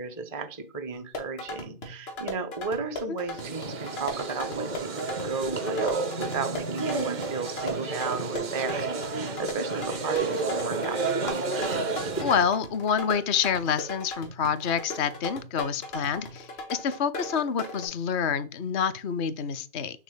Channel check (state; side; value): late; right; 2.4 ms